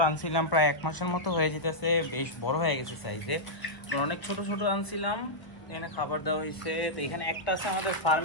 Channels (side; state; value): right; late; 1.0 ms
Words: আনছিলাম প্রায় 1 মাসের মতো হয়ে যেতেছে, বেশ বড় হয়ে গেছে সাইজে। অনেক ছোট ছোট আনছিলাম, এখানে খাবার দেওয়া হয়েছে। তো এখানে একটা আছে আমাদের